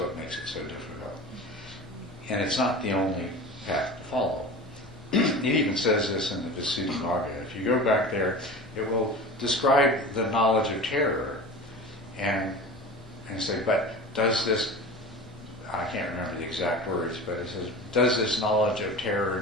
makes it so difficult. And it's not the only path to follow. It even says this in the Visuddhimagga. If you go back there, it will describe the knowledge of terror and say, but does this, I can't remember the exact words, but it says, does this knowledge of terror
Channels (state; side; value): normal; both; correlation 0.34